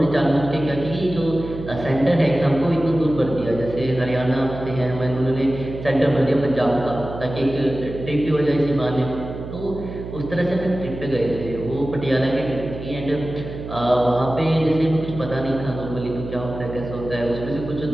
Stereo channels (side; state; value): right; noise; hum, 10 dB below the sound